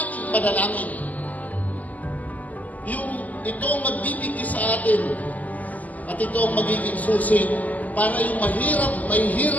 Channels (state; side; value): late; right; 0.078 ms